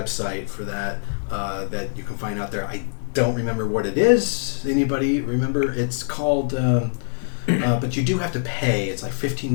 for that that you can find out there. I don't remember what it is. Anybody remember? It's called... but you do have to pay. It's like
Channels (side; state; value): right; silent; digital silence